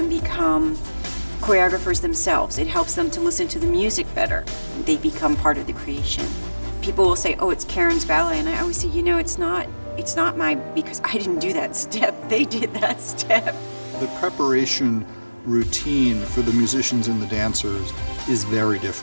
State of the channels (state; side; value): inverted; both; correlation -1.00